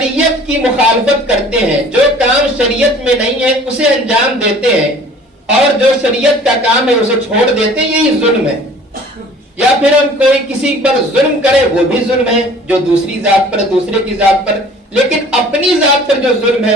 کی مخالفت کرتے ہیں، جو کام شریعت میں نہیں ہے اسے انجام دیتے ہیں، اور جو شریعت کا کام ہے اسے چھوڑ دیتے ہیں، یہی ظلم ہے. یا پھر ہم کوئی کسی پر ظلم کرے وہ بھی ظلم ہے، جو دوسری ذات پر، دوسرے کی ذات پر. لیکن اپنی ذات پر جو ظلم ہے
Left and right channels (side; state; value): both; normal; correlation 0.49